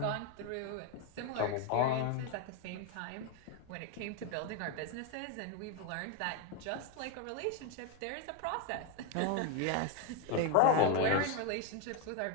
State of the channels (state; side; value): different; both; correlation 0.02